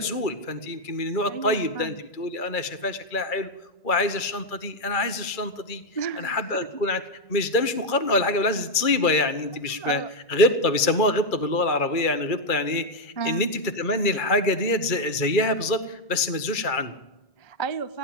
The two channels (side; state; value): right; late; 2.3 ms